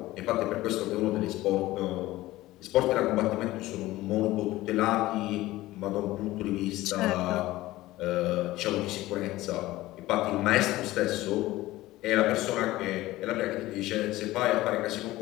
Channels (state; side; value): quieter; right; 17.3 dB